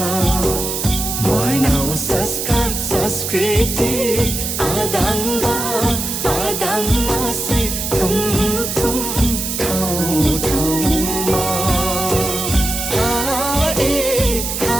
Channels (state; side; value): noise; right; hiss, 3 dB below the sound